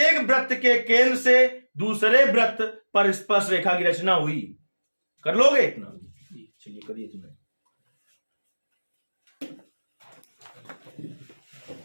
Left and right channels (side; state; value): both; inverted; correlation -1.00